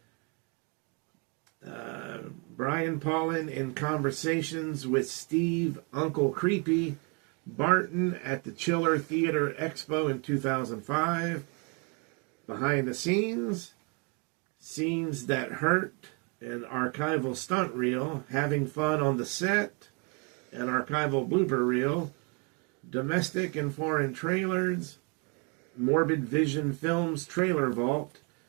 Brian Paulin in conversations with Steve Uncle Creepy Barton at the Chiller Theater Expo in 2005. Behind the scenes, Scenes That Hurt, an archival stunt reel, Having Fun on the Set, an archival blooper reel, Domestic and Foreign Trailers, Morbid Vision Films Trailer Vault,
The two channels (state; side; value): quieter; left; 33.5 dB